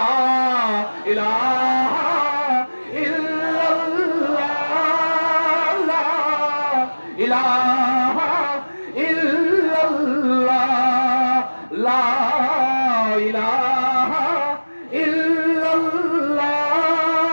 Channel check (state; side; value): inverted; both; correlation -1.00